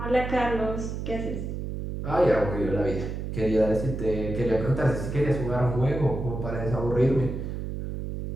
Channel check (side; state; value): right; noise; hum, 5 dB below the sound